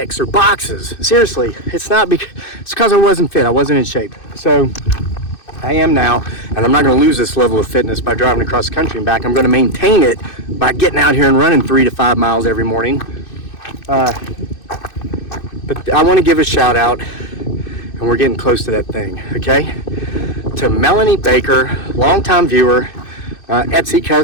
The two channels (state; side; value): late; right; 2.6 ms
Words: or boxes. Seriously, it's because I wasn't fit. I wasn't in shape. So I am now, and I'm not going to lose this level of fitness by driving across the country and back. I'm going to maintain it by getting out here and running 3 to 5 miles every morning. But I want to give a shout out, and we're getting close to that thing, okay? To Melanie Baker, longtime viewer, Etsy